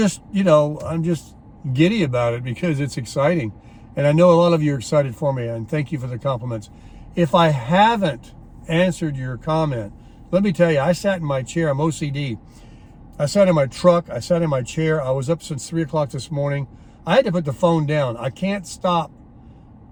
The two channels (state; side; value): identical; both; correlation 1.00